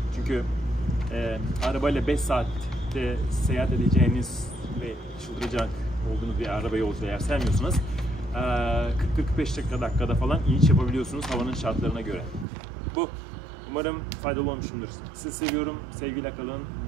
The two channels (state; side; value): drops out; left; at 12.5 s